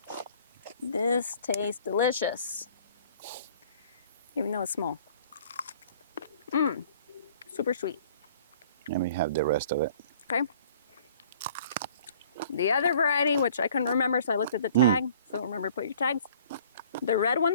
This tastes delicious, even though it's small. Super sweet. Let me have the rest of it. Okay. The other variety, which I couldn't remember, so I looked at the tag. So remember to put your tags. The red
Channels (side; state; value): both; inverted; correlation -0.53